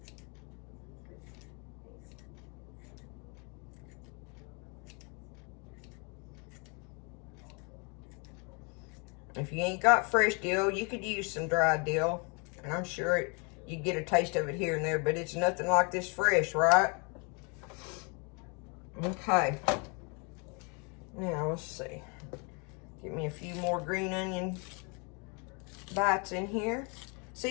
If you ain't got fresh dill, you could use some dried dill. And I'm sure you get a taste of it here and there, but it's nothing like this fresh, right? Okay. Now, let's see. Give me a few more green onion bites in here.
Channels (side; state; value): right; quieter; 33.5 dB